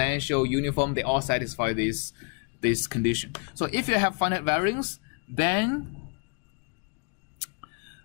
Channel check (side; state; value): right; quieter; 39.1 dB